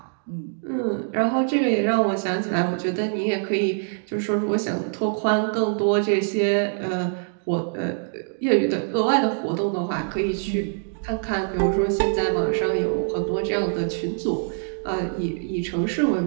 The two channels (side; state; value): left; silent; digital silence